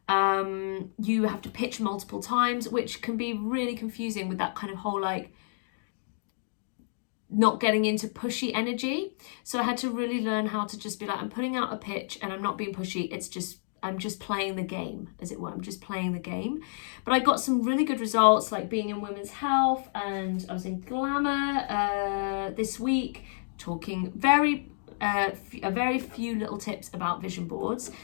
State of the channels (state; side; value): silent; right; digital silence